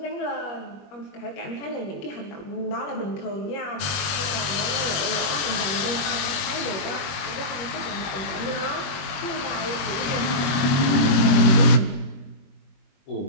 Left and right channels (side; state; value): right; late; 21 ms